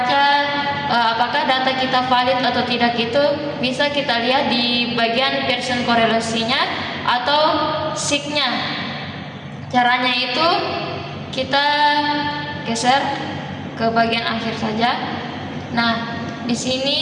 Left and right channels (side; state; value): both; identical; correlation 1.00